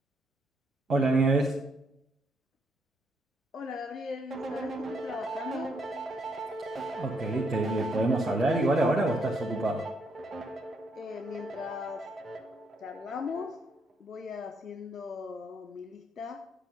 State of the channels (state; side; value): normal; both; correlation 0.73